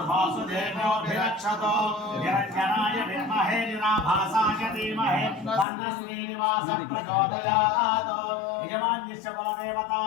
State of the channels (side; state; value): right; drops out; at 5.7 s